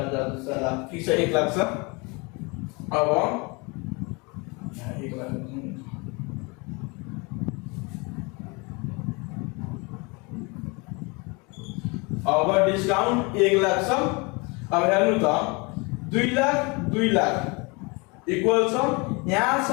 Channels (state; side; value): quieter; right; 28.9 dB